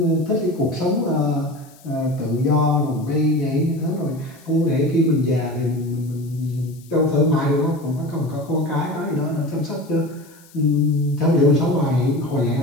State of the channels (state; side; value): noise; left; hiss, 26 dB below the sound